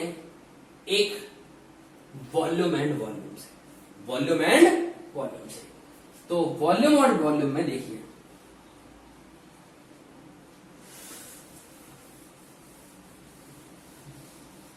एक वॉल्यूम एंड वॉल्यूम से, वॉल्यूम एंड वॉल्यूम से। तो वॉल्यूम और वॉल्यूम में देखिए,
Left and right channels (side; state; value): both; identical; correlation 1.00